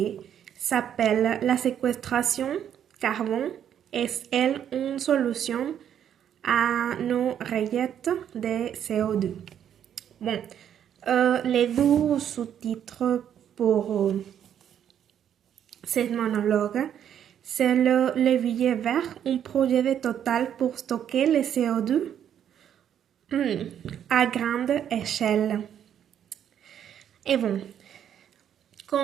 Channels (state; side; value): quieter; left; 9.5 dB